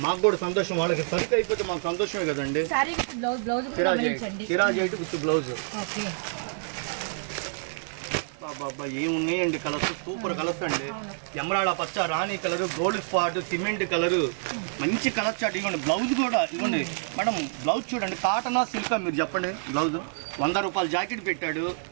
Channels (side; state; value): left; silent; 60 dB below the other